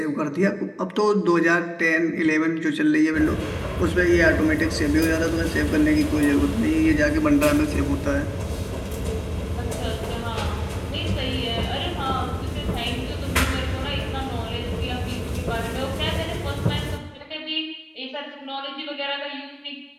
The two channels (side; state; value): both; identical; correlation 1.00